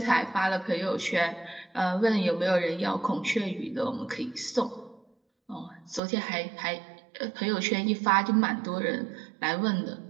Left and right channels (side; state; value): left; drops out; at 6.0 s